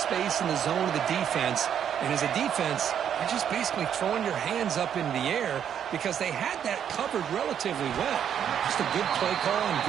in the zone of the defense. And as a defense, you're just basically throwing your hands up in the air because they had that covered relatively well. Just a good play call and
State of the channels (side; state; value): left; quieter; 8.9 dB